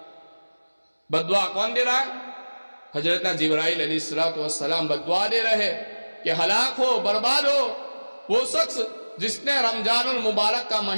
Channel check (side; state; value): both; inverted; correlation -1.00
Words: بددعا کون دے رہا ہے؟ حضرت جبرائیل علیہ السلام بددعا دے رہے کہ ہلاک ہو، برباد ہو وہ شخص جس نے رمضان المبارک کا